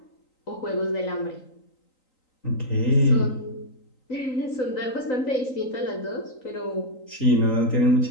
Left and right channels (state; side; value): late; right; 3.9 ms